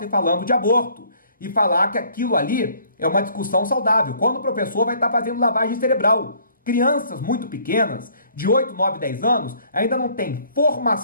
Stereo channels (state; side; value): inverted; both; correlation -0.59